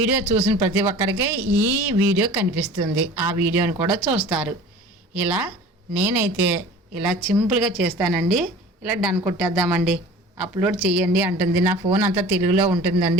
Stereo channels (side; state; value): both; normal; correlation 0.42